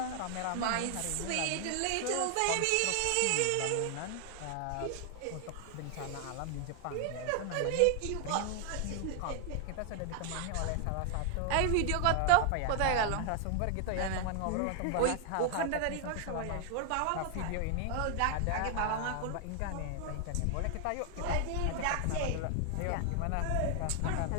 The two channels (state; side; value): different; both; correlation 0.00